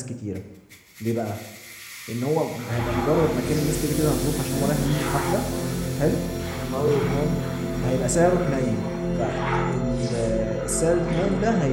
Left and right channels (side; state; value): both; identical; correlation 1.00